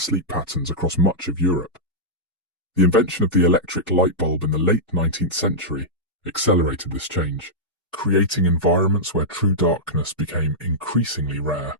patterns across much of Europe. The invention of the electric light bulb in the late 19th century accelerated this change, creating environments where true darkness became increasingly rare.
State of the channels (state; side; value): normal; both; correlation -0.09